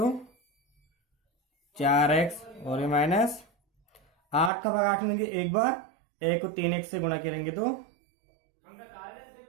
4x, और ये माइनस 8 का भाग 8 में देंगे 1 बार, 1 को 3x से गुणा करेंगे तो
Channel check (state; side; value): drops out; left; at 4.5 s